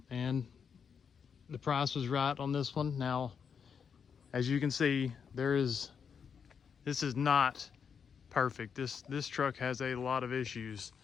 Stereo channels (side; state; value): right; quieter; 6.7 dB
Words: and the price was right on this one. Now, as you can see, this is not perfect. This truck has a lot of issues.